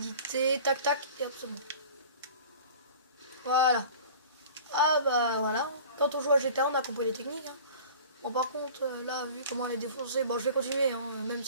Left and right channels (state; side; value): inverted; both; correlation -0.42